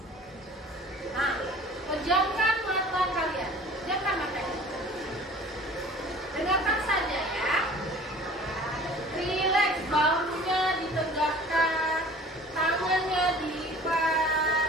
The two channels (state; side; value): normal; both; correlation 0.46